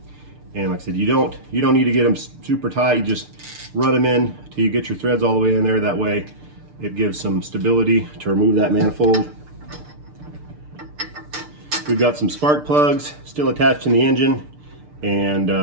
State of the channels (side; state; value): left; late; 6.7 ms